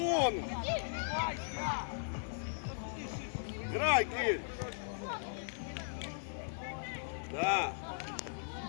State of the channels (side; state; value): right; silent; 53 dB below the other